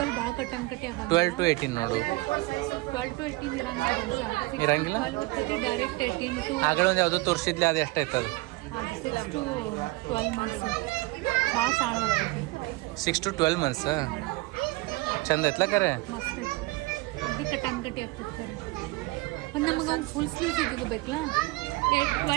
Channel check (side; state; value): left; quieter; 22.2 dB